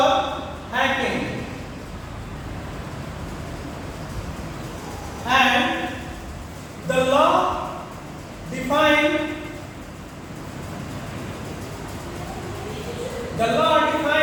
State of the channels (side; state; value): both; identical; correlation 1.00